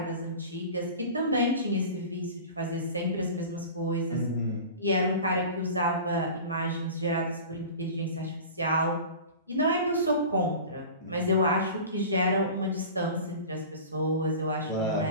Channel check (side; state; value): both; inverted; correlation -0.37